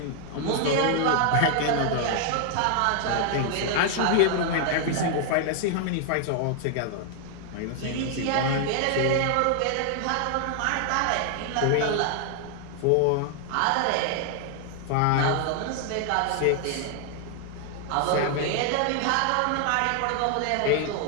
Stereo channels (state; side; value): different; both; correlation 0.00